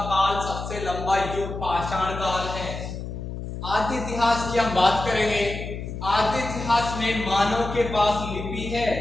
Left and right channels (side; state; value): left; noise; hum, 7 dB below the sound